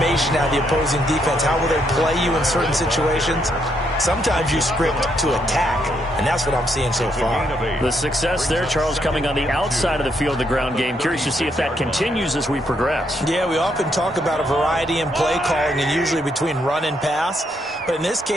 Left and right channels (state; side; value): normal; both; correlation 0.75